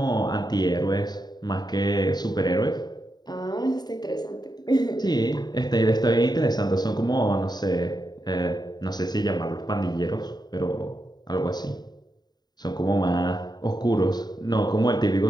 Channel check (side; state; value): right; late; 0.20 ms